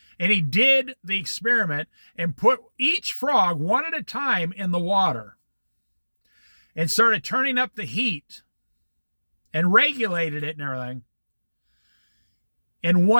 and he did the experiment and put each frog one at a time in the water and started turning up the heat and regulated it and everything. And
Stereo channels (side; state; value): both; inverted; correlation -1.00